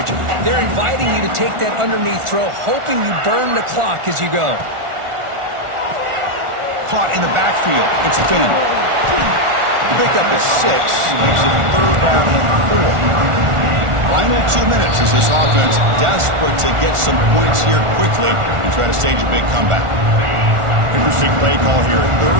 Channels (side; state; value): left; late; 1.4 ms